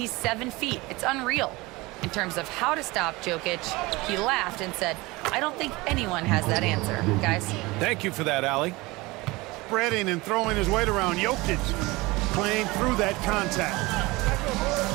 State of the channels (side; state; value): left; quieter; 22.3 dB